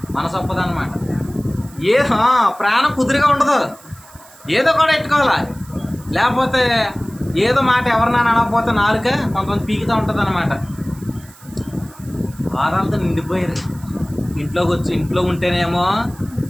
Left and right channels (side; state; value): right; noise; hiss, 23 dB below the sound